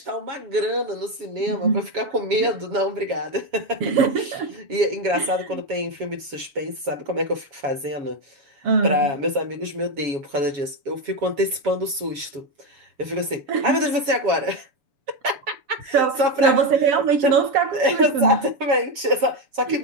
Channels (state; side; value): late; left; 7.3 ms